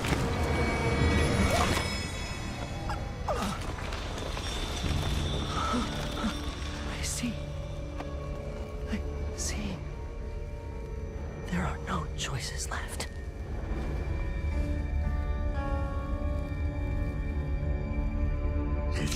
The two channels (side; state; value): both; identical; correlation 1.00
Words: I see. There are no choices left.